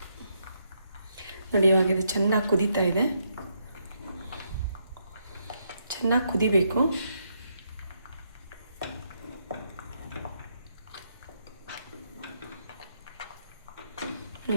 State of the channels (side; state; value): both; inverted; correlation -0.77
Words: ನೋಡಿ, ಇವಾಗ ಇದು ಚೆನ್ನಾಗಿ ಕುದೀತಾ ಇದೆ. ಚೆನ್ನಾಗಿ ಕುದಿಬೇಕು.